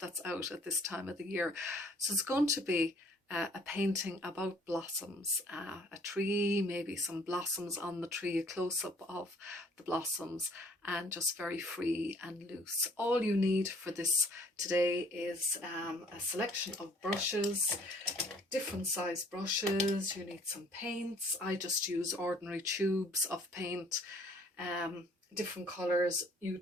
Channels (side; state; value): both; normal; correlation 0.57